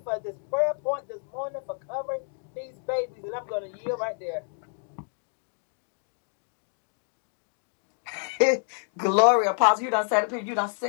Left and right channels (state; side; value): silent; right; 57 dB below the other